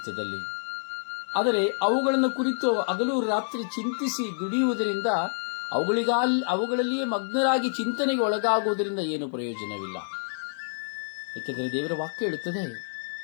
ಆದರೆ ಅವುಗಳನ್ನು ಕುರಿತು ಹಗಲು ರಾತ್ರಿ ಚಿಂತಿಸಿ ದುಡಿಯುವುದರಿಂದ, ಅವುಗಳಲ್ಲಿಯೇ ಮಗ್ನರಾಗಿ ಚಿಂತನೆಗೆ ಒಳಗಾಗುವುದರಿಂದ ಏನು ಪ್ರಯೋಜನವಿಲ್ಲ. ಏಕೆಂದರೆ ದೇವರ ವಾಕ್ಯ ಹೇಳುತ್ತದೆ,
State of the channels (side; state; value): right; silent; digital silence